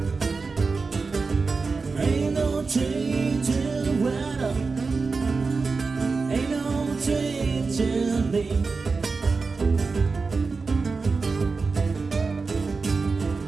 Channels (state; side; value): quieter; left; 4.4 dB